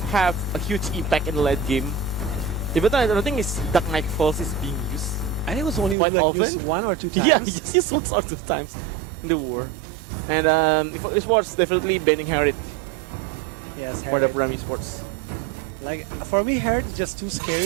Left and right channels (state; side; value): drops out; left; at 6.0 s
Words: have a huge impact in the late game. Even though I don't think it's Dark Knight Falls is being used. I think it was only Quite like often? used 1 or 2 times. Yeah, he just used once or 2 times in the war. And Esports definitely banning Harriet Yes, for the Harriet. Prime Esports. Like, for me, Harriet is just too